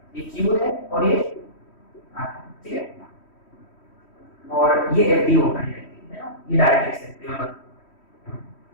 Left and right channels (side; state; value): right; late; 3.1 ms